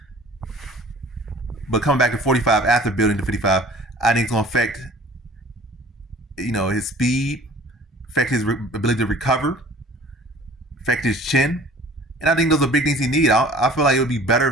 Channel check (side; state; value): both; normal; correlation 0.48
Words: But coming back to 45 after building to 55, I think it's going to affect, his speed, affect his ability to recover, affect his chin. And I think those are big things he needs. I feel like it would be better